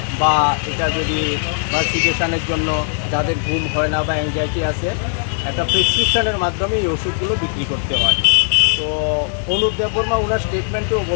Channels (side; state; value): right; silent; 62 dB below the other